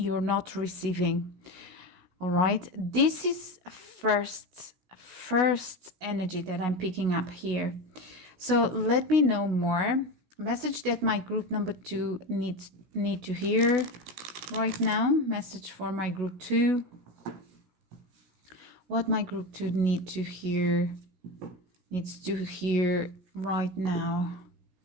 not receiving. All right, this is first energy that I'm picking up here. So let me know more. Message that my group number 2 need to hear right now. Message for my group 2. What my group 2 needs to hear right now.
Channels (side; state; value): left; late; 16 ms